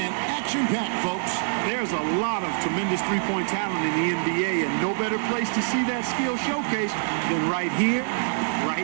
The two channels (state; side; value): silent; left; digital silence